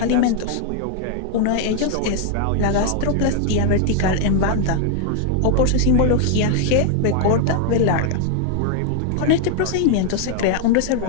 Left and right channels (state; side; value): different; both; correlation 0.00